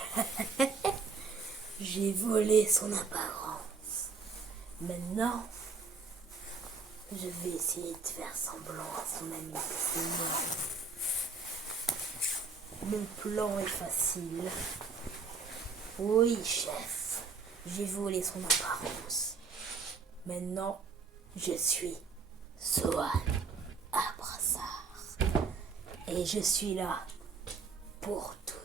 J'ai volé son apparence. Maintenant, je vais essayer de faire semblant à son ami que c'est moi. Mon plan est facile. Oui, chef, j'ai volé son apparence. Maintenant, je suis Sohan Abrassard. Et je suis là pour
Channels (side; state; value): left; quieter; 4.9 dB